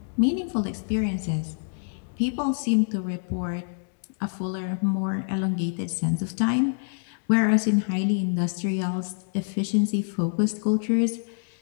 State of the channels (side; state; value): right; silent; digital silence